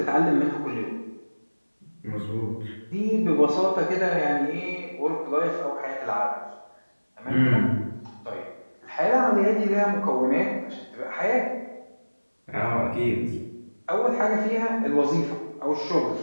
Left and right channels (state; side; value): inverted; both; correlation -1.00